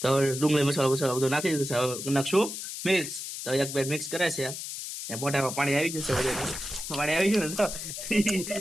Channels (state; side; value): noise; left; hiss, 7 dB below the sound